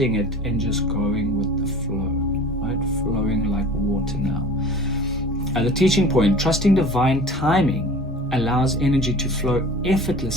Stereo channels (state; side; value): normal; both; correlation 0.41